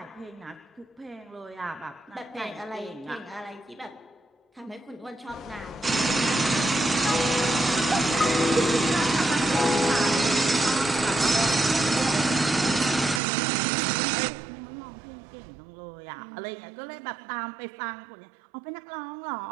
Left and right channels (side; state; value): left; drops out; at 13.2 s